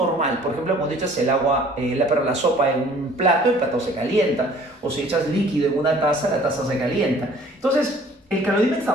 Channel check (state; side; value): normal; both; correlation 0.53